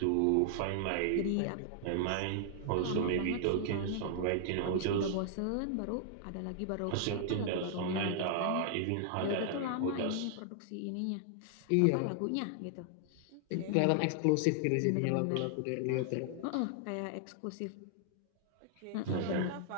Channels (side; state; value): both; different; correlation 0.00